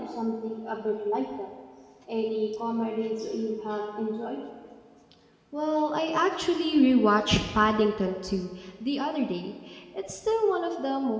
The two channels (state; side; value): identical; both; correlation 1.00